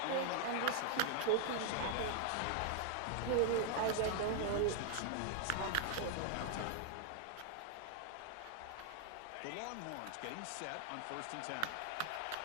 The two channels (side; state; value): both; different; correlation -0.01